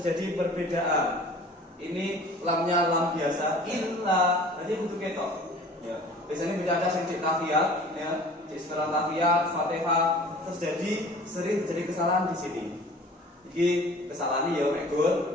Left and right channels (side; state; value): both; normal; correlation 0.46